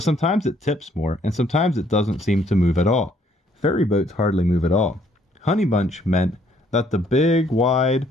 sometimes it tips more, and sometimes it doesn't seem to move at all. Ferry boats hardly move at all." Honeybunch meant that the big, wide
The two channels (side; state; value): both; normal; correlation 0.65